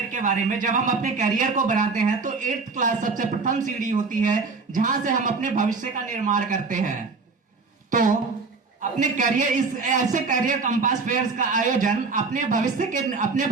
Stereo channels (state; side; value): quieter; left; 4.3 dB